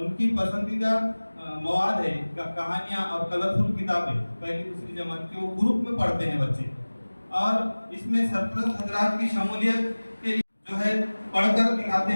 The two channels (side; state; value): both; inverted; correlation -1.00